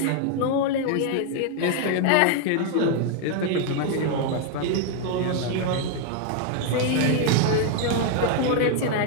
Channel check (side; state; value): both; different; correlation 0.00